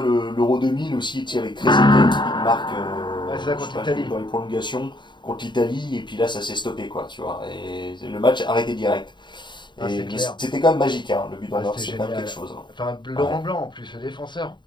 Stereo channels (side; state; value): right; late; 0.22 ms